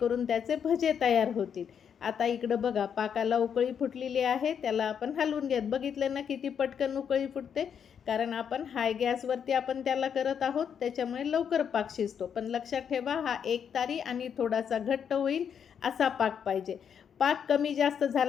त्याचे भजे तयार होतील. आता इकडं बघा, पाकाला उकळी फुटलेली आहे, त्याला आपण हलवून घेत. बघितलं ना किती पटकन उकळी फुटते, कारण आपण हाय गॅसवरती आपण त्याला करत आहोत, त्याच्यामुळे लवकर पाक शिजतो. पण लक्षात ठेवा, हा एकतारी आणि थोडासा घट्ट होईल असा पाक पाहिजे. पाक कमी जास्त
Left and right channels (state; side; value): quieter; right; 7.7 dB